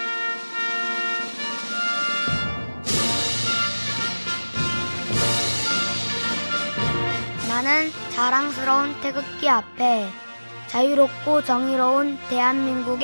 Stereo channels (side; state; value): both; inverted; correlation -1.00